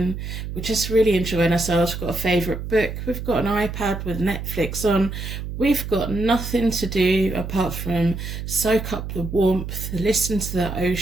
We're just really enjoying ourselves. We've got a favourite book. We've got an iPad with Netflix on. We've got nothing to do apart from soak up the warmth, listen to the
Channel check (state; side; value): noise; right; hum, 7 dB below the sound